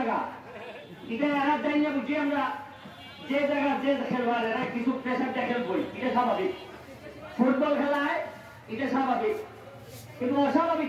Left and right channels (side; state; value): both; identical; correlation 1.00